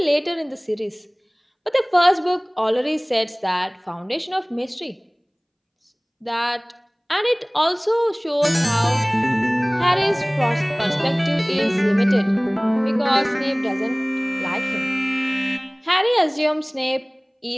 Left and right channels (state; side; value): identical; both; correlation 1.00